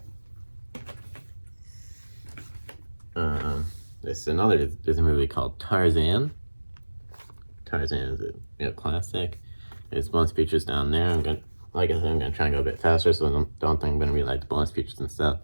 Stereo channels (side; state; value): both; inverted; correlation -1.00